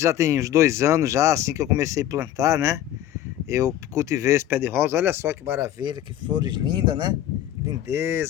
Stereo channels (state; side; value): quieter; right; 12.0 dB